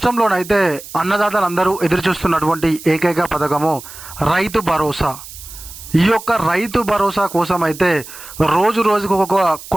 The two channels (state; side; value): noise; right; hiss, 15 dB below the sound